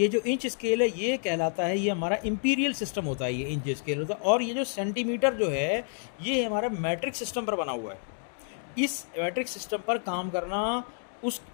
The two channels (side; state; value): right; silent; 59 dB below the other